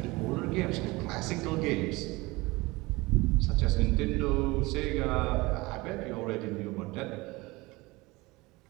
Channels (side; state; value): left; quieter; 22.5 dB